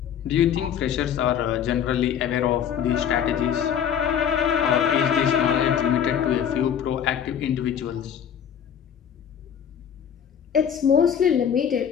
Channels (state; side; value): quieter; right; 8.6 dB